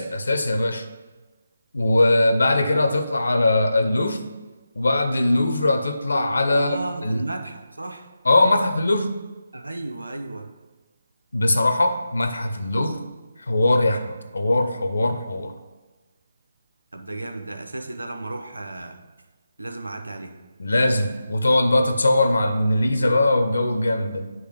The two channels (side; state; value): both; inverted; correlation -0.91